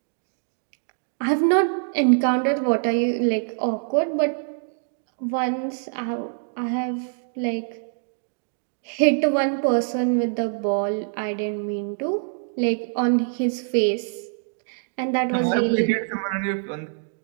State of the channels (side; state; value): left; silent; digital silence